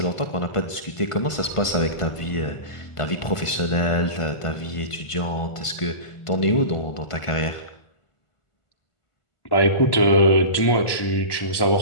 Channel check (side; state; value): right; late; 1.5 ms